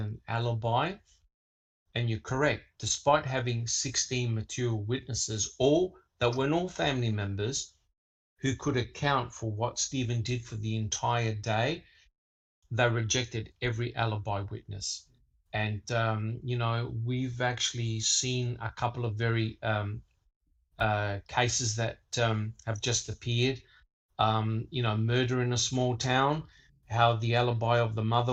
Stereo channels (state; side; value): identical; both; correlation 1.00